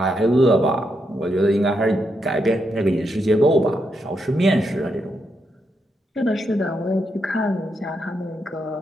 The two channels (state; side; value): normal; both; correlation 0.81